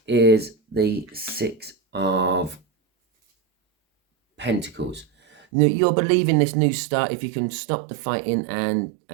is the Six of Pentacles. Now, you're believing this new start. If you can stop the fighting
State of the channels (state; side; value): drops out; left; at 5.5 s